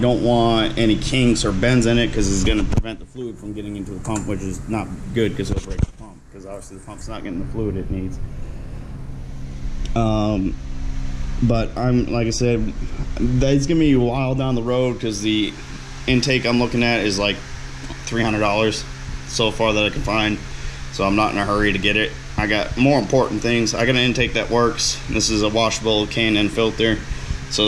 want any kinks or bends in it, because it's gonna prevent the fluid from getting into the pump, which is not good because it'll break the pump, because obviously the pump's not getting the fluid it needs. But like I said, that's gonna be a while down the road, because the intake I'm looking at is like $300 so far that I can find, so I'm not in a hurry to get it. I I got more important things. I got an intake that works. This is a washable K&N filter, so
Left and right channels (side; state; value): both; identical; correlation 1.00